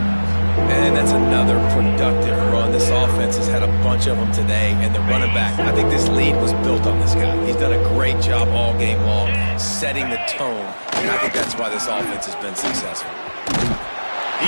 And that's another productive run. This offense has had a bunch of them today, and the running back, I think this lead was built on this guy. He's done a great job all game long, setting the tone, and I think that's why this offense has been successful.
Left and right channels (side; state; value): both; inverted; correlation -1.00